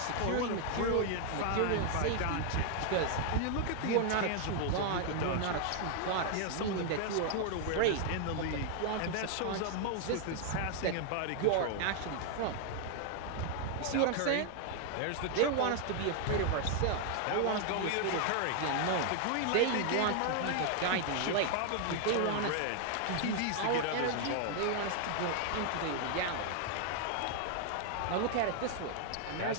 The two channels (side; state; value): both; different; correlation 0.00